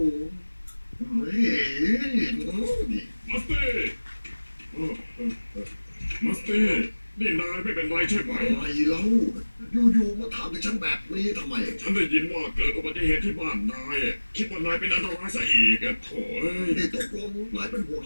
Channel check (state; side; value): inverted; both; correlation -1.00